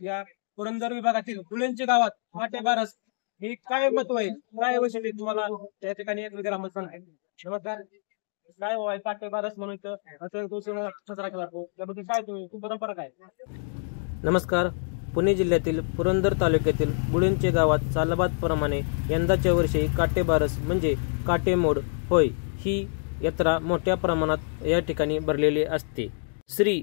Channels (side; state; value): right; silent; 58 dB below the other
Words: या पुरंदर विभागातील गुळूंचे गावात काटे बारस हे काय महत्व आहे, काय वैशिष्ट्य तुम्हाला त्या ठिकाणी एक ग्रामस्थ सांगेल. नमस्कार, काय होय काटे बारस म्हणून इथं उत्सव साजरा केला जातो त्याबद्दल काय तुम्ही परंपरा काय? नमस्कार. पुणे जिल्ह्यातील पुरंदर तालुक्यातील गुळूंचे गावात सालाबादप्रमाणे यंदाच्या वर्षी काटेबारस म्हणजे काटेमोड होय ही यात्रा मोठ्या प्रमाणात या ठिकाणी भरलेली असते. श्री